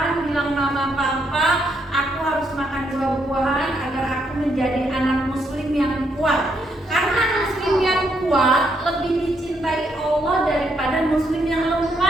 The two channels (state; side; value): normal; both; correlation 0.75